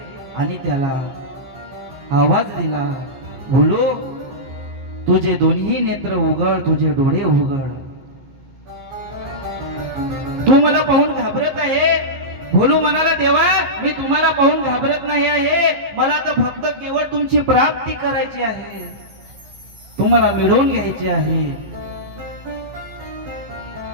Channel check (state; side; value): late; left; 15 ms